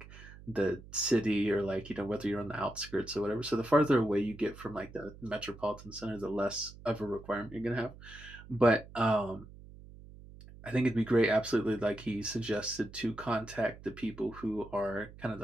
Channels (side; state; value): right; noise; hum, 18 dB below the sound